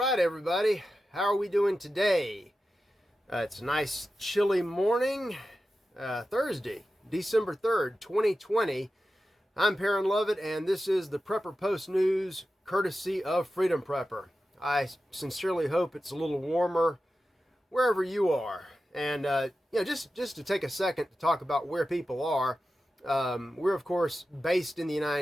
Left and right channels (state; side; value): normal; both; correlation 0.92